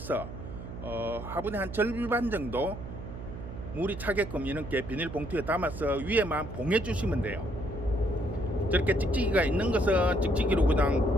화분의 한 절반 정도 물이 차게끔 이렇게 비닐봉투에 담아서 위에만 봉해 주시면 돼요. 저렇게 찍찍이가 있는 것은 찍찍이로 그냥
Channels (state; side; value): noise; right; hum, 10 dB below the sound